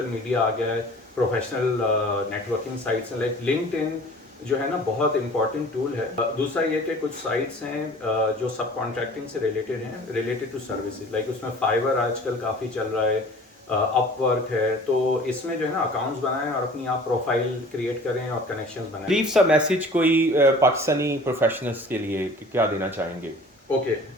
میڈیا آ گیا ہے, پروفیشنل نیٹ ورکنگ سائٹس ہیں لائک لنکڈ ان جو ہے نا بہت امپورٹنٹ ٹول ہے. دوسرا یہ کہ کچھ سائٹس ہیں جو سب کانٹریکٹنگ سے ریلیٹڈ ہیں, ریلیٹڈ ٹو سروسز, لائک اس میں فائبر آج کل کافی چل رہا ہے, اپ ورک ہے. تو اس میں جو ہے نا اکاؤنٹس بنائیں اور اپنی آپ پروفائل کریٹ کریں اور کنیکشنز بنائیں. لیو سا میسج کوئی پاکستانی پروفیشنلز کے لیے کیا دینا چاہیں گے؟ اوکے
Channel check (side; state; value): both; normal; correlation 0.46